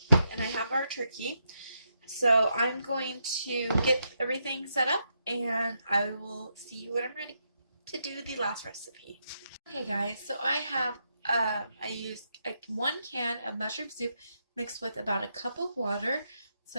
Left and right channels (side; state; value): both; inverted; correlation -0.81